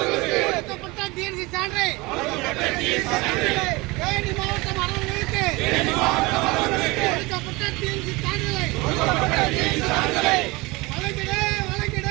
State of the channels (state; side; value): quieter; left; 23.6 dB